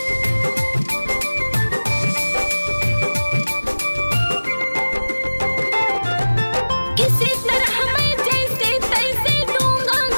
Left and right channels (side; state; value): both; inverted; correlation -1.00